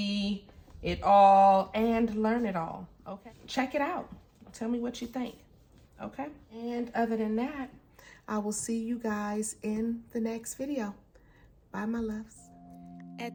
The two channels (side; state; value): both; identical; correlation 1.00